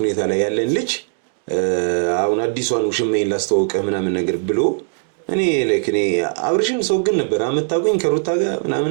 ሁኔታ ላይ ያለን ልጅ አሁን አዲሷን ውሽማዬን ላስተዋውቅህ ምናምን ነገር ብሎ እኔ አብርሽን ሰው ግን ነበር አመጣቁኝ ከሩታ ጋር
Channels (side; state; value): left; silent; digital silence